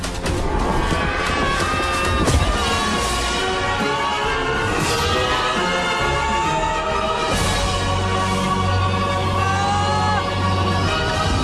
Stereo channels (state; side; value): identical; both; correlation 1.00